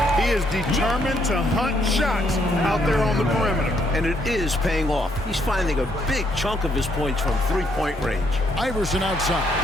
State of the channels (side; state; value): both; normal; correlation 0.72